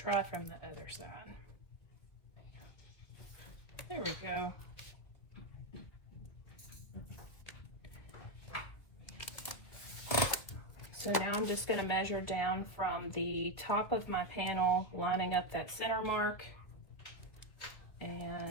from the other side. There we go. So now I'm just going to measure down from the top of my panel, lining up that center mark.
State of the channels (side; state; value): right; late; 2.1 ms